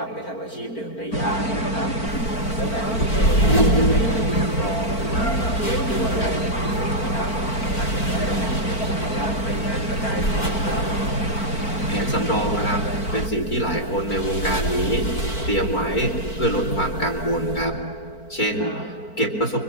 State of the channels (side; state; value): right; late; 4.5 ms